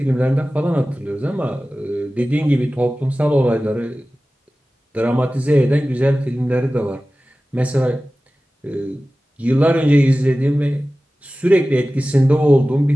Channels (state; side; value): normal; both; correlation 0.96